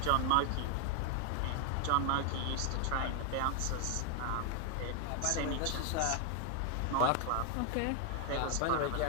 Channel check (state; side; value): different; both; correlation 0.00